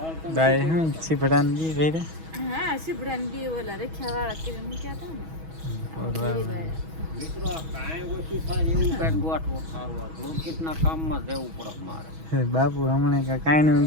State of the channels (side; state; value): left; late; 6.2 ms